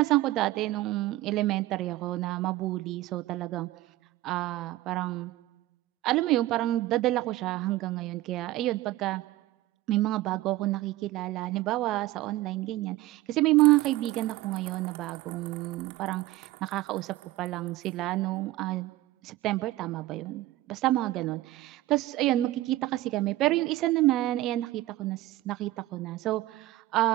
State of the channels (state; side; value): quieter; left; 16.8 dB